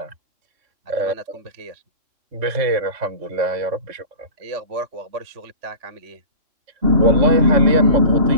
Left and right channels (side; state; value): left; late; 3.6 ms